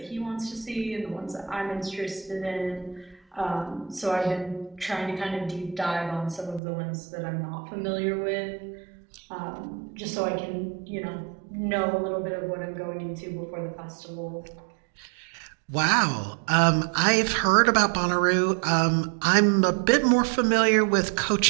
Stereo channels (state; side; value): drops out; left; at 6.6 s